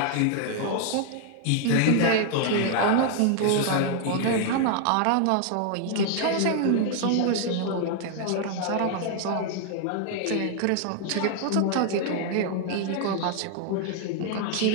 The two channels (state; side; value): different; both; correlation 0.00